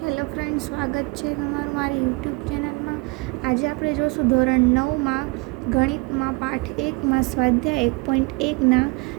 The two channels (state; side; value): quieter; left; 27.4 dB